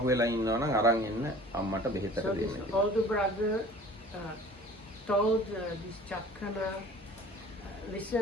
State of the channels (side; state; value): both; normal; correlation 0.47